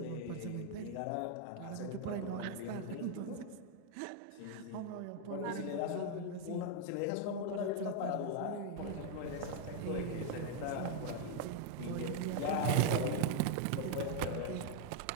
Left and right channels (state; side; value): different; both; correlation 0.00